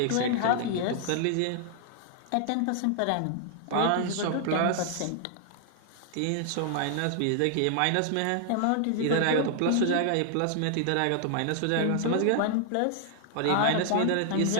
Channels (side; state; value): both; different; correlation 0.00